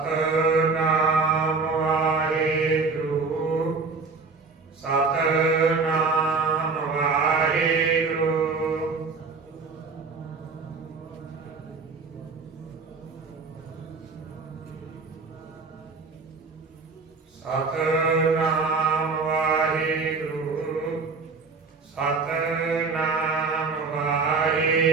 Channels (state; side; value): quieter; left; 4.4 dB